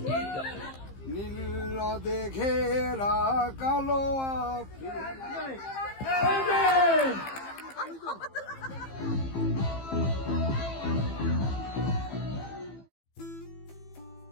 নীল নদে ঘেরা কালো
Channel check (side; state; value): right; late; 15 ms